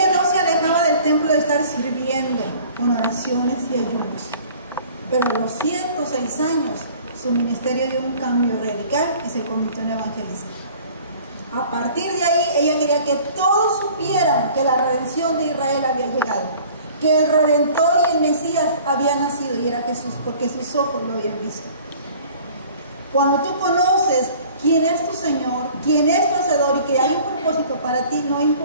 no se alejaba del templo de estar sirviendo con oraciones y ayunos, pero a los 106 años su ministerio dio un cambio radical y se convirtió en evangelista. A partir de ahí ella quería que todos supieran que la redención de Israel había llegado, que el Redentor y el Mesías había nacido, y era Jesús, porque sus ojos lo habían visto. Cuando tú conoces quién es tu Señor, quién es tu Hacedor y que hay un propósito para ti, no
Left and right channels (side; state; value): both; inverted; correlation -0.50